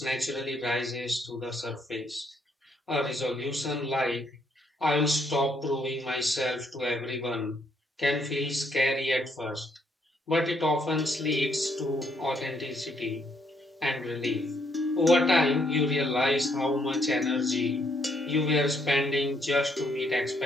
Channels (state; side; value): normal; both; correlation 0.72